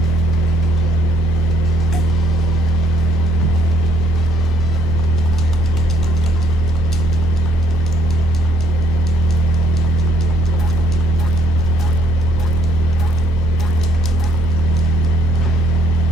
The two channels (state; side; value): normal; both; correlation 0.62